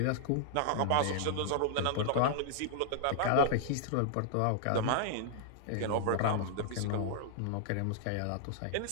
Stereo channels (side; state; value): both; different; correlation -0.01